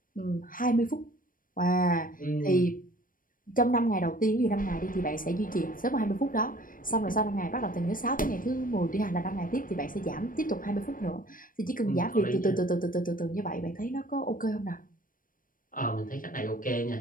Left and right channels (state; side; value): late; right; 0.40 ms